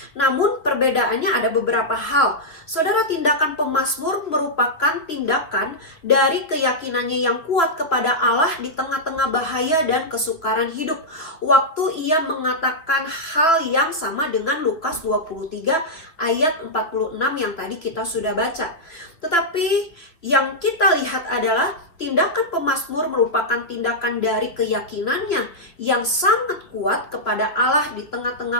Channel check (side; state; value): right; late; 3.0 ms